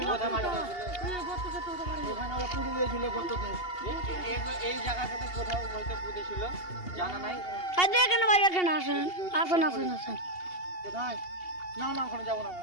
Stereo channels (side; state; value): right; late; 2.8 ms